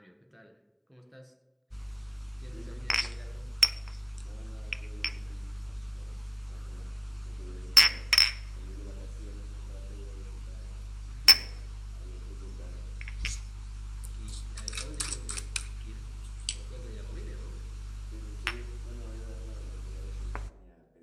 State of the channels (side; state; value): both; identical; correlation 1.00